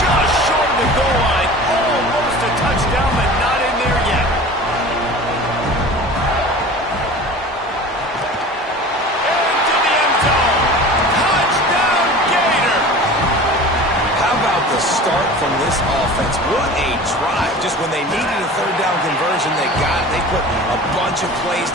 short of the goal line. Almost a touchdown, but not in there yet. Into the end zone. Touchdown, Gator. How about the start from this offense? What a drive. Just when they needed a third down conversion, they got it. They put a bunch of plays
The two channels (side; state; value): both; normal; correlation 0.39